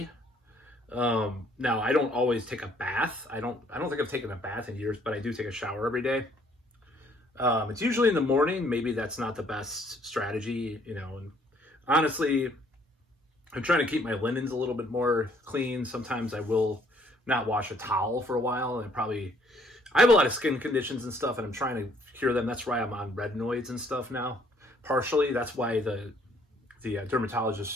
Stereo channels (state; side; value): normal; both; correlation 0.64